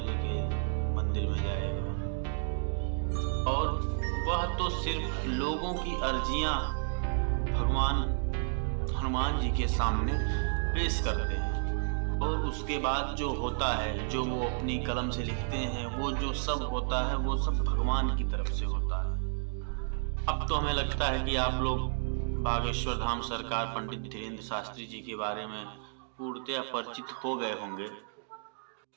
के मंदिर में जाएगा। और वह तो सिर्फ लोगों की अर्जियां भगवान हनुमान जी के सामने पेश करते हैं और उसके बाद जो होता है, जो वो अपनी कलम से लिखते हैं, वो जो सब होता है वो सब भगवान की तरफ से होता है। अब तो हमें लगता है कि आप लोग बागेश्वर धाम सरकार पंडित धीरेन्द्र शास्त्री जी के बारे में पूर्णतया परिचित हो गए होंगे।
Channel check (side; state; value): left; silent; digital silence